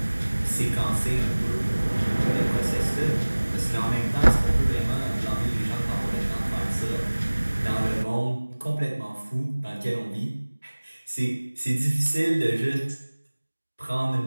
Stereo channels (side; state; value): both; inverted; correlation -1.00